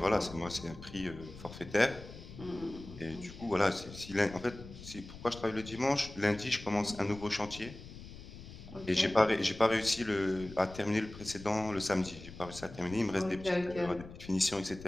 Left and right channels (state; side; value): noise; left; rumble, 15 dB below the sound